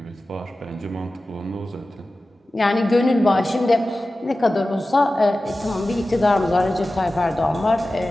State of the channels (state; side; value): normal; both; correlation 0.95